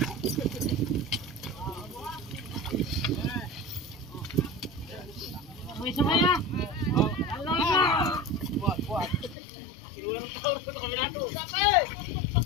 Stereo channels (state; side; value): drops out; right; at 9.3 s